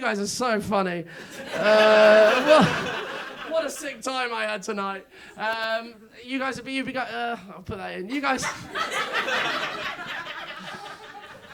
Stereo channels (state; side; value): identical; both; correlation 1.00